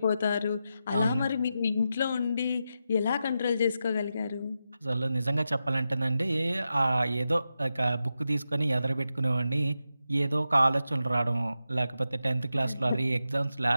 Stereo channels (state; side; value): inverted; both; correlation -0.89